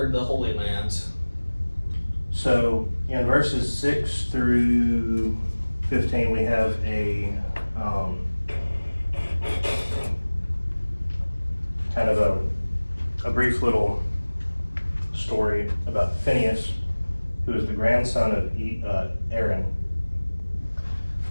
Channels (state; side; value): inverted; both; correlation -1.00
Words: the Holy Land. So in verses 6 through 15, we have a kind of a brief little story about Phineas, who is the grandson of Aaron,